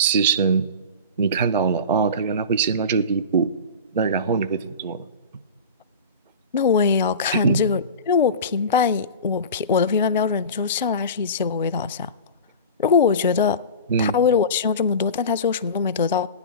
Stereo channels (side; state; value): both; inverted; correlation -0.30